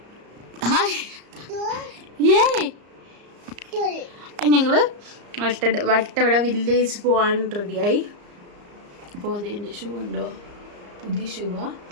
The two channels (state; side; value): late; left; 34 ms